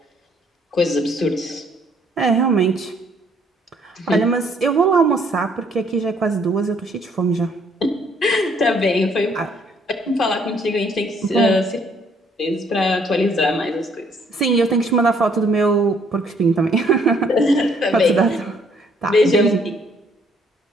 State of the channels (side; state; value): both; normal; correlation 0.65